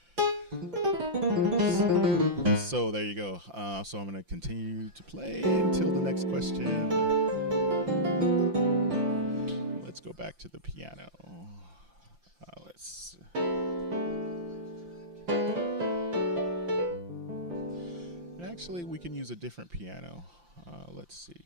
so there you go. So I'm going to continue to play until the next question. Let's go back to the piano. Let's. Actually, we can use a different piano. Let's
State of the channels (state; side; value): late; left; 5.8 ms